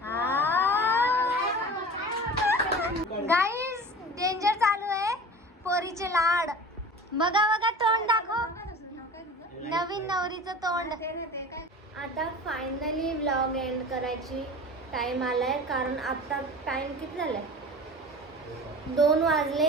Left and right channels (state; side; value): normal; both; correlation 0.37